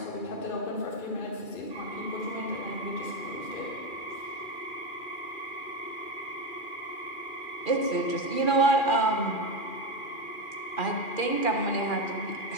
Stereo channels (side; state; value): right; late; 2.4 ms